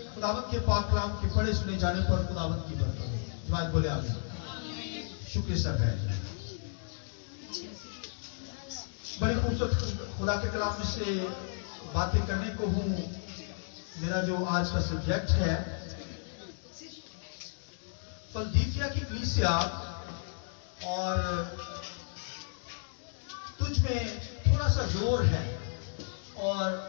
خداوند کے پاک کلام کے پڑھے سنے جانے پر خداوند کی برکت ہو. جماعت بولے آمین. شکر سر ہے. بڑی خوبصورت خدا کے کلام میں سے باتیں کرنے کو ہوں. میرا جو آج کا سبجیکٹ ہے فلدیفیا کی کلیسیا اور تجھ میں تھوڑا سا زور ہے اور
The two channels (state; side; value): silent; right; digital silence